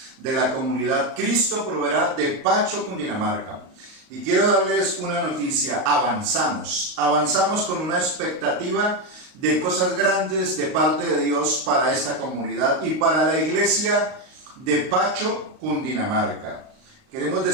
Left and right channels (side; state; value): left; late; 38 ms